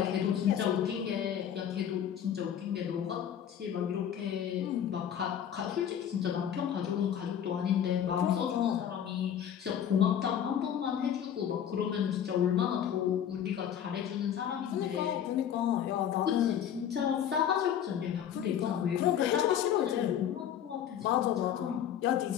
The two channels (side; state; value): right; quieter; 9.4 dB